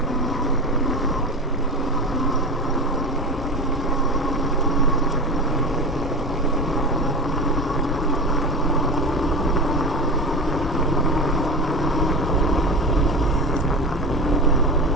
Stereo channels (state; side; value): normal; both; correlation 0.27